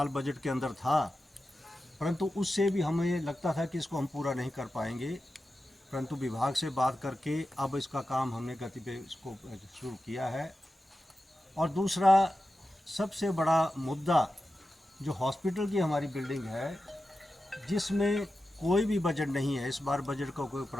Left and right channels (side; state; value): both; normal; correlation 0.92